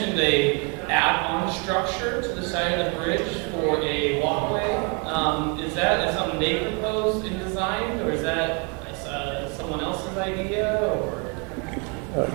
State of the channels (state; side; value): quieter; left; 34.2 dB